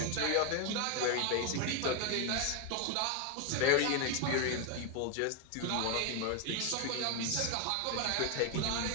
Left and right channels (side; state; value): both; different; correlation 0.01